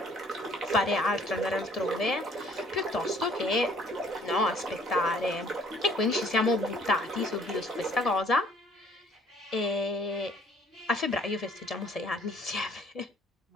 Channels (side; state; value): both; normal; correlation 0.58